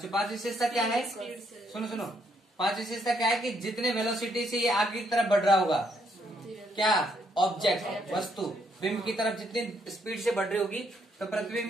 पांच विशेषता क्या है? सुनो, पांच विशेषता क्या है कि जितने वेलोसिटी से ये आगे की तरफ बढ़ रहा होगा, क्या ऑब्जेक्ट वस्तु बिंब की तरफ जितनी स्पीड से बढ़ रही होगी तो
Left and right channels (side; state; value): both; normal; correlation 0.73